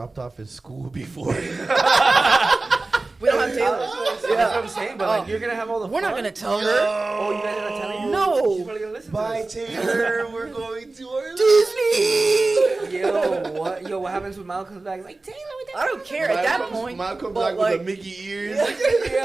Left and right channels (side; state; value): left; quieter; 3.3 dB